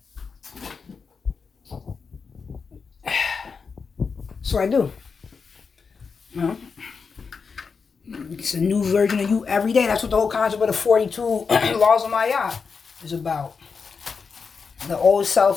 So I do. Well, it's a new version of you every day. That's what the whole concept of the 42 laws of Maya is about. The old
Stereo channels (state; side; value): quieter; right; 5.4 dB